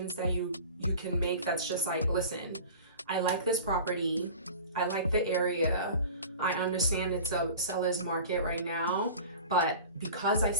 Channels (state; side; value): inverted; both; correlation -0.39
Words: that you can make that's just like, listen, I like this property, I like the area, I understand it's a seller's market right now, but because I